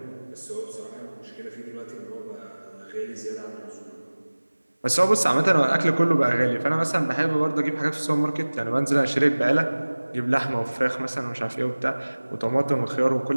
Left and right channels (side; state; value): both; inverted; correlation -1.00